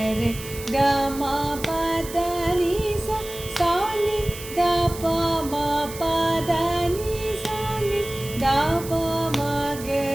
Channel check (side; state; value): right; noise; hiss, 13 dB below the sound